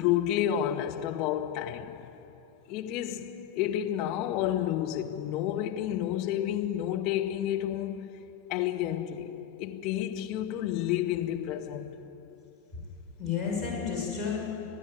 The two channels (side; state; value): right; quieter; 10.5 dB